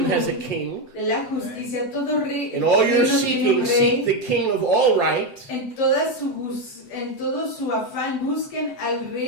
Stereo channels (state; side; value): late; right; 7.7 ms